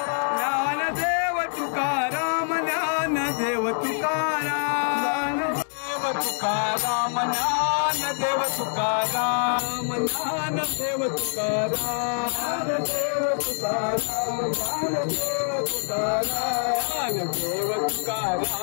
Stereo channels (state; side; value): silent; right; digital silence